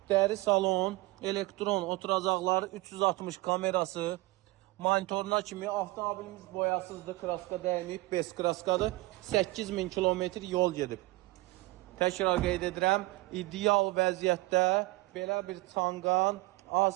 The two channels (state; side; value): quieter; left; 21.2 dB